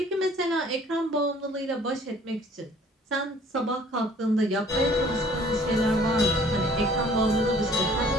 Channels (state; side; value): normal; both; correlation 0.55